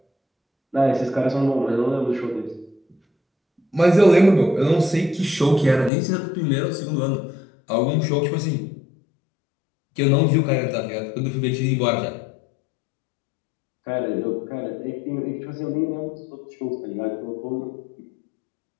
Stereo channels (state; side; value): drops out; right; at 5.9 s